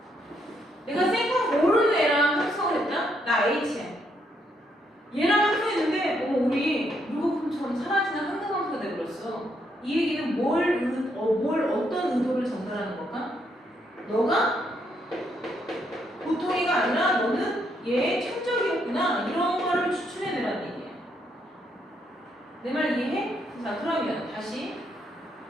내가 생각 모르는 애랑 합성을 했다? 나 H야. 얘랑 합성했는데 우리 물거품처럼 사라지는 항등함수가 돼버렸어. 이 얘기는 어떤 의도를 전달하는 걸까? 너가 보통이가 아니라 너는 얘의 천적이었구나. 이런 거를 추출해내라는 얘기야. 내 말 이해해? 자, 그러면 다시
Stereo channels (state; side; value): normal; both; correlation 0.75